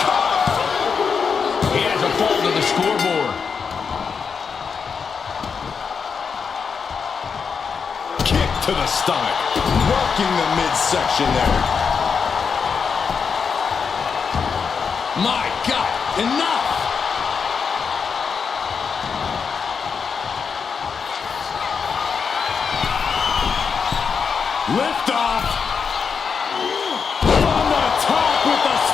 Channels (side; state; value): right; quieter; 5.9 dB